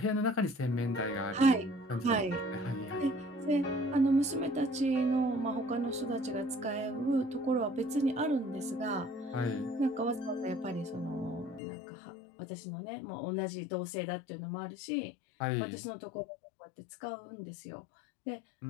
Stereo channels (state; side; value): drops out; right; at 11.6 s